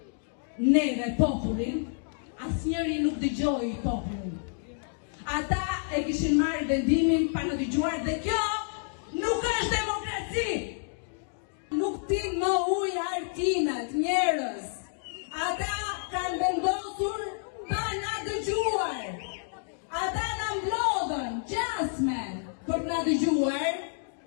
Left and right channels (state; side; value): silent; right; digital silence